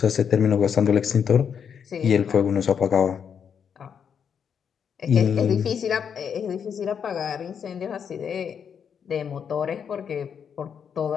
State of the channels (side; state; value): right; quieter; 7.4 dB